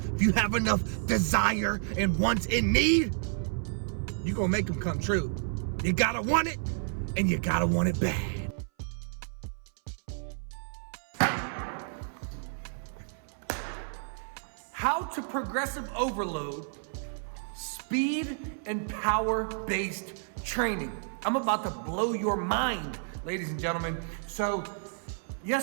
if you have enough desire and wants and need, you're going to make them come true. You got to want it, and you got to want it bad. How to progressive overload speed and power-based training. I'm about to blow your mind, ladies and gentlemen. So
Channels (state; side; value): silent; left; 57 dB below the other